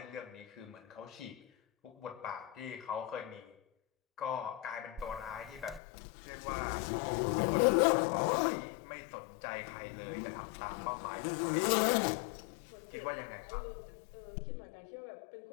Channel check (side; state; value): right; drops out; at 5.8 s